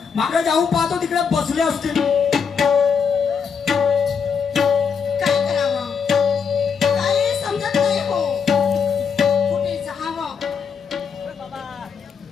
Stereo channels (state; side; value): quieter; right; 6.3 dB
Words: मागे जाऊन पाहतो तिकडे बसले असतील. काय करावं काही समजत नाही हो. कुठे जावं